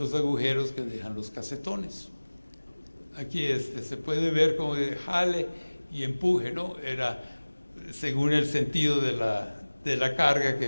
agujeros que dejan los casetones. Aquí se puede ver como de jale y empuje, ¿no? Era según el sentido de la carga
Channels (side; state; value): both; inverted; correlation -1.00